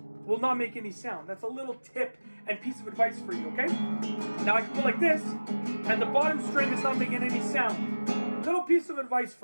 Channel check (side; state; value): both; inverted; correlation -1.00